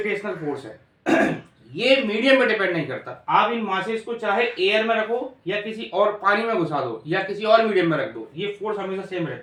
फोर्स है ये मीडियम पे डिपेंड नहीं करता। आप इन मासेस को चाहे एयर में रखो या किसी और पानी में घुसा दो या किसी और मीडियम में रख दो, ये फोर्स हमेशा सेम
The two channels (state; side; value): identical; both; correlation 1.00